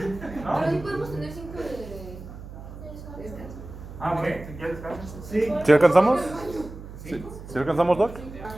¿No? Pero sí podemos tener 5 de... Ah, ok, si quieres descansar. Sí. ¿Sí alcanzamos? ¿Sí alcanzamos, Doc?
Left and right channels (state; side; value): noise; right; hum, 13 dB below the sound